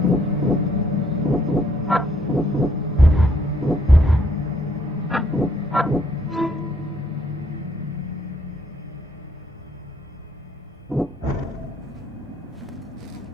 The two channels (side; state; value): both; normal; correlation 0.68